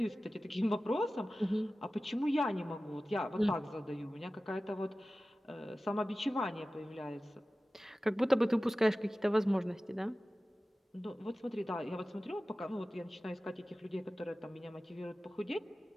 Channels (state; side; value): normal; both; correlation 0.96